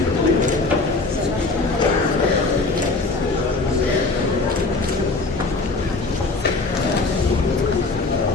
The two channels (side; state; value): right; quieter; 3.5 dB